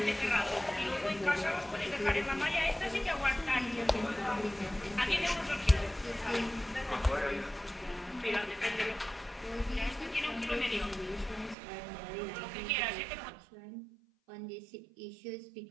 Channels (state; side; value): drops out; left; at 11.6 s